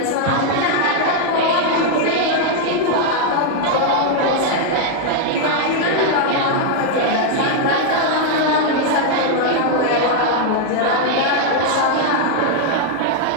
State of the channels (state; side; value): different; both; correlation 0.00